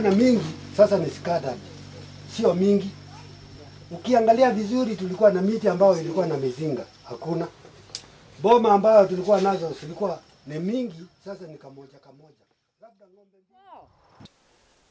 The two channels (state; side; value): identical; both; correlation 1.00